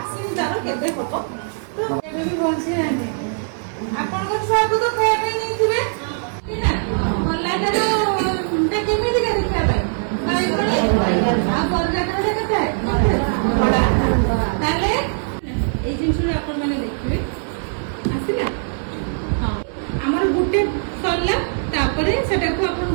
ତାର କେବେ ହବ ତ ଏବେ ବି ବଞ୍ଚି ନାହାନ୍ତି ଆପଣଙ୍କ ଛୁଆକୁ ତ ଖାଇବା ପାଇଁ ନେଇଥିବେ କଲାଟାର କେମିତିକା ଦେଖିବା ପାଇଁ ଆଉ ବର୍ଗାଟା କେତେ ତାହେଲେ এই জিনিসটা আপন মানে দেখবে আসিলা হ্যাঁ আমার গুটে সরলা তারপরে সেটাকে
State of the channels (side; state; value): left; silent; 65 dB below the other